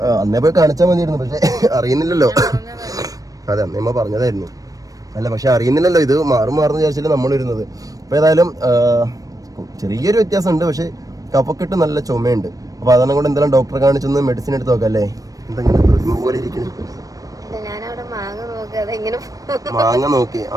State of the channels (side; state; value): left; late; 0.17 ms